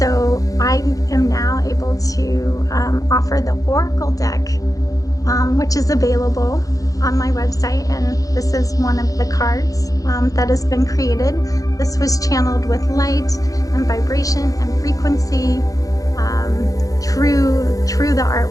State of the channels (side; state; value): right; late; 0.17 ms